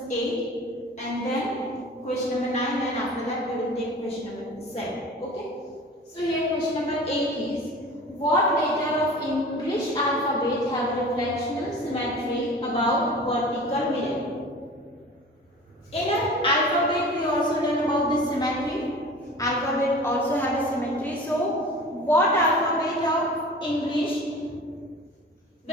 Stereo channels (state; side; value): normal; both; correlation 0.40